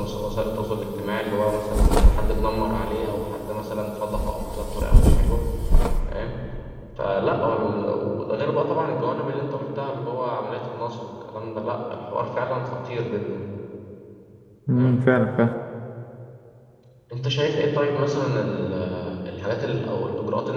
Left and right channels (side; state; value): both; identical; correlation 1.00